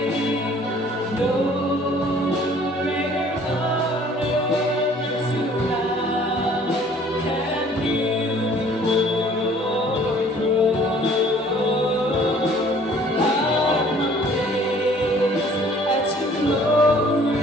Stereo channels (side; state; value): both; normal; correlation 0.55